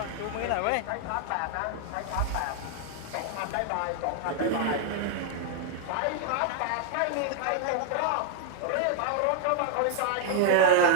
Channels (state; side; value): different; both; correlation 0.00